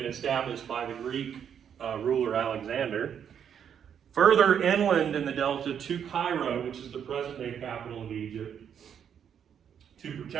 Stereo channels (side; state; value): left; quieter; 8.3 dB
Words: established by the Greek ruler Alexander, further inland in the delta to Cairo, which is the present-day capital of Egypt, to